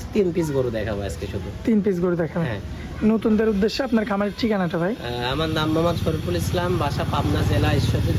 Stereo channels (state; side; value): identical; both; correlation 1.00